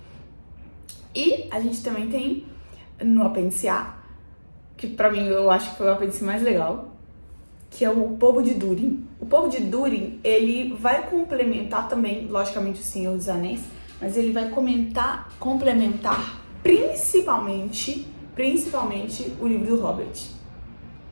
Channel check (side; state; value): both; inverted; correlation -1.00